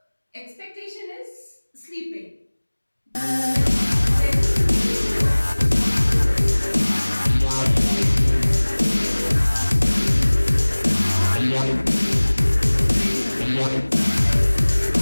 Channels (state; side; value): inverted; both; correlation -1.00